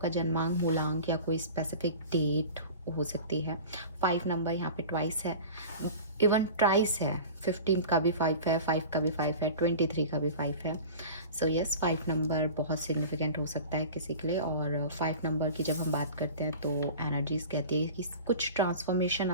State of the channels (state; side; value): inverted; both; correlation -0.37